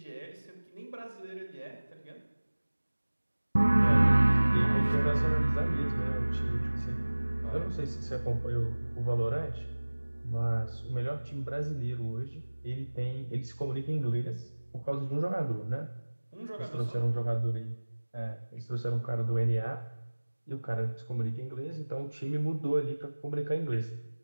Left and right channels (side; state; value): both; inverted; correlation -1.00